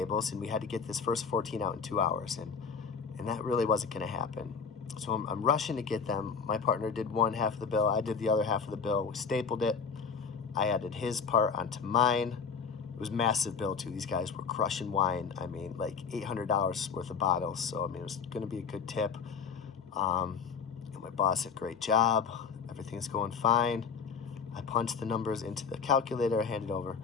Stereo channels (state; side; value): quieter; right; 6.0 dB